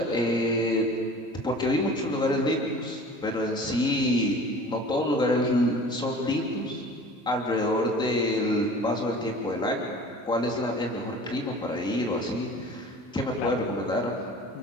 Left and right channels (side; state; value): both; normal; correlation 0.43